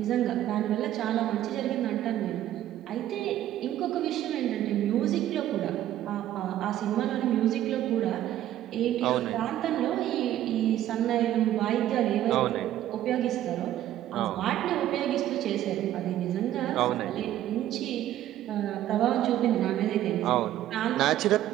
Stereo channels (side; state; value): left; quieter; 12.6 dB